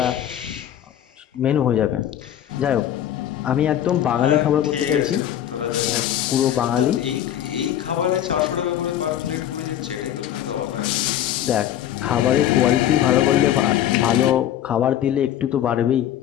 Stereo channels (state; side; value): quieter; right; 11.1 dB